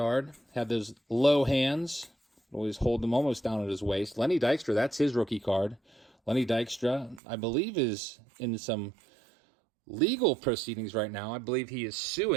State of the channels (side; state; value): left; drops out; at 7.2 s